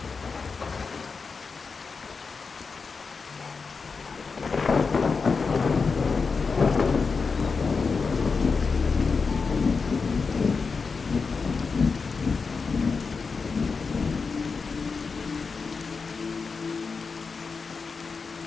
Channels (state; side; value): quieter; right; 4.9 dB